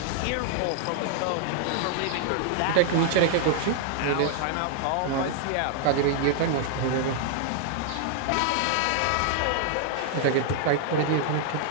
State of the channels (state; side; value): different; both; correlation -0.01